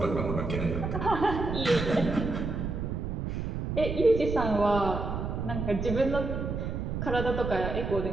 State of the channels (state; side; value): noise; right; rumble, 3 dB below the sound